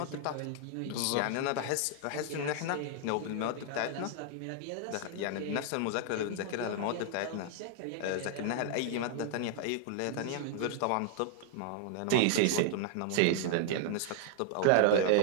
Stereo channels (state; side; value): different; both; correlation 0.00